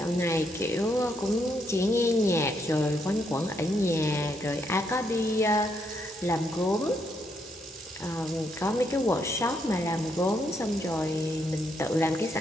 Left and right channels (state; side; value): normal; both; correlation 0.76